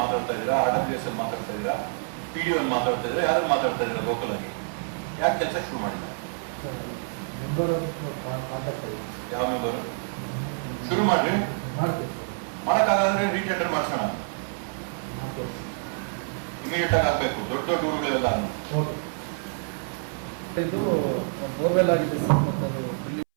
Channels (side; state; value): left; silent; 60 dB below the other